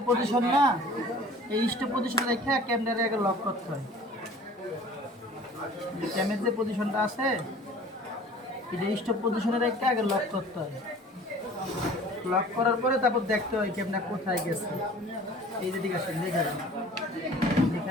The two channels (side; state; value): both; normal; correlation 0.47